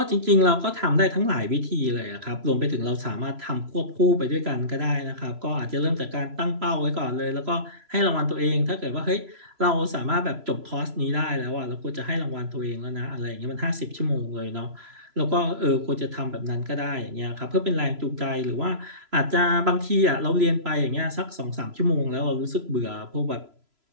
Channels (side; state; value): left; late; 3.0 ms